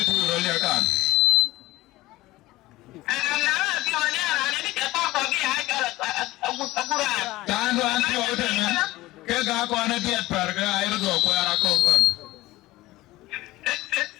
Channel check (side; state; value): right; quieter; 18.2 dB